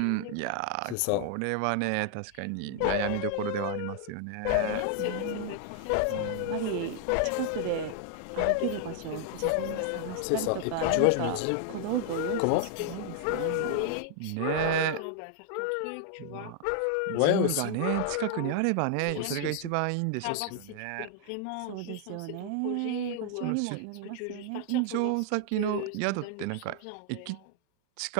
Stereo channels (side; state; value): both; different; correlation 0.00